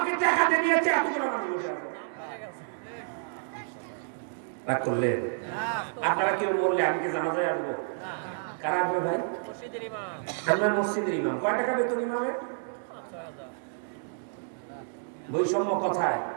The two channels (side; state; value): left; silent; digital silence